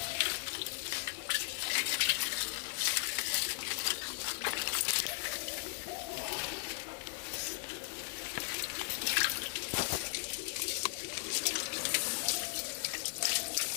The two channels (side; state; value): right; silent; digital silence